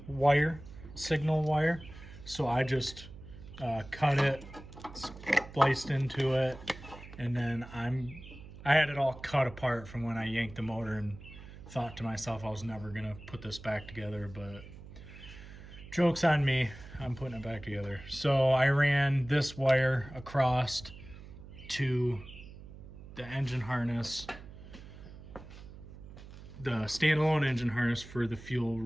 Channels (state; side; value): noise; right; hum, 16 dB below the sound